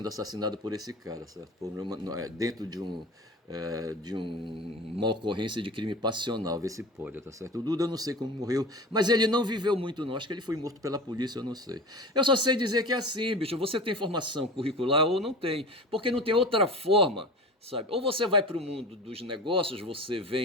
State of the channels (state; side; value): normal; both; correlation 0.34